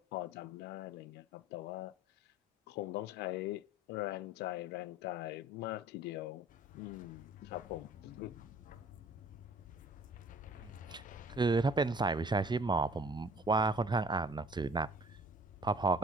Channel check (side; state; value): both; normal; correlation 0.50